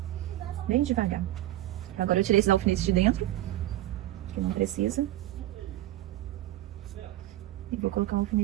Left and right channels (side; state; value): left; quieter; 15.2 dB